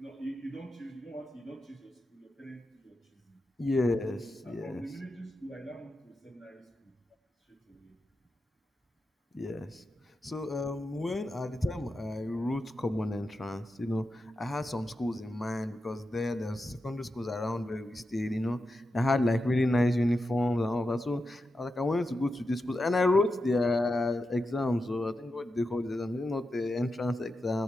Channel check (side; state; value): both; normal; correlation 0.89